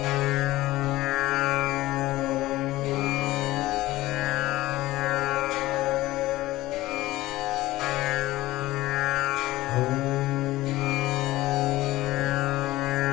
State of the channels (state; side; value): quieter; right; 17.3 dB